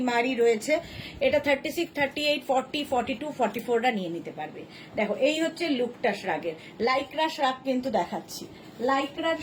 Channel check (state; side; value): identical; both; correlation 1.00